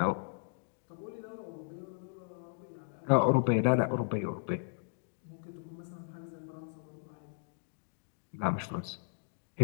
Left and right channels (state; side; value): silent; right; digital silence